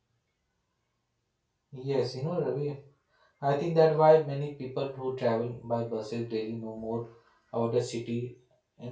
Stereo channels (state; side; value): identical; both; correlation 1.00